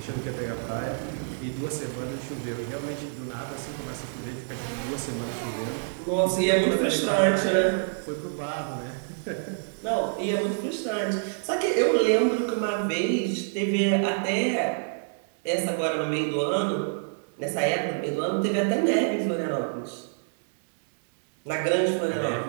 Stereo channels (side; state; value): left; silent; digital silence